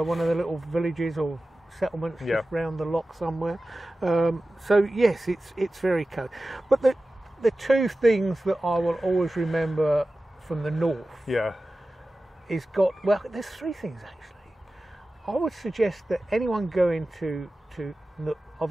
of the little villages or settlements just round the lock somewhere. So yes, it's very cold. But the two things that I will always remember from the north is there's three things actually. I would suggest that anyone going to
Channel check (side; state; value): both; normal; correlation 0.95